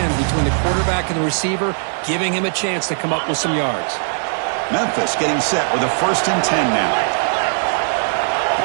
between the quarterback and the receiver, giving him a chance to come up with some yards. Memphis getting set with a 1st and 10 now.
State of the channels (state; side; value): silent; left; digital silence